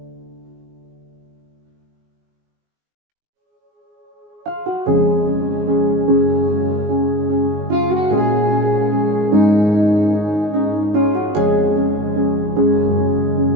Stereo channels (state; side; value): late; left; 19 ms